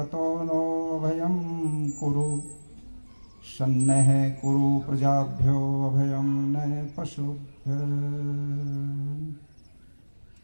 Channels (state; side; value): inverted; both; correlation -1.00